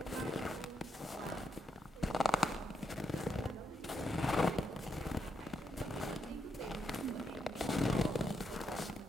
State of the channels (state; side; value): normal; both; correlation 0.81